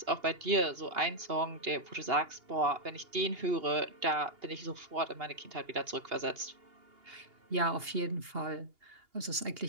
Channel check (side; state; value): left; late; 2.8 ms